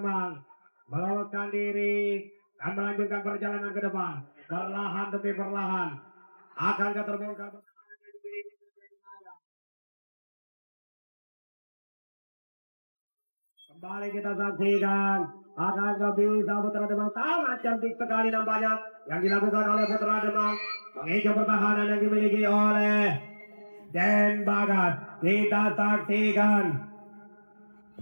meloloskan diri dan melanjutkan perjalanan ke depan. Perlahan demi perlahan akan terbongkar. Kembali kita saksikan. Akan bisa Putra Demak sangat cantik sekali nampaknya yang dilakukan oleh Putra Demak. Mengejar pertahanan yang dimiliki oleh Den Bagas. Kita saksikan.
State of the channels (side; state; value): both; inverted; correlation -1.00